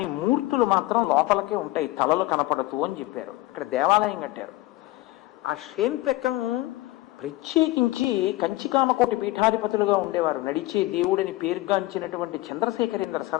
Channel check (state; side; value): quieter; right; 18.5 dB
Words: మూర్తులు మాత్రం లోపలికే ఉంటాయి, తలలు కనపడతూ అని చెప్పారు. ఇక్కడ దేవాలయం కట్టారు. ఆ షేన్పెక్కం ప్రత్యేకించి కంచికామకోటి పీఠాధిపతులుగా ఉండేవారు. నడిచే దేవుడిని పేరుగాంచినటువంటి చంద్రశేఖరేంద్ర